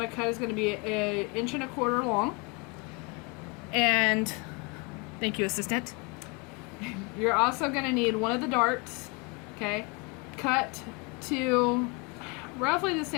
to cut is going to be 1.25 inches long. And thank you, assistant. You're also going to need one of the darts, okay, cut to roughly the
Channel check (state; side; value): quieter; right; 29.7 dB